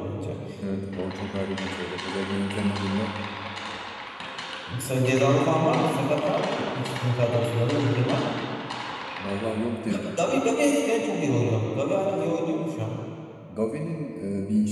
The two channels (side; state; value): both; identical; correlation 1.00